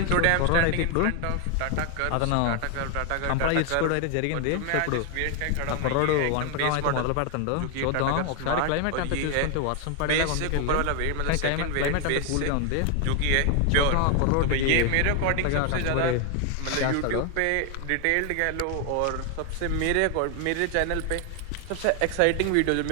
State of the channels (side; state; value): both; different; correlation 0.01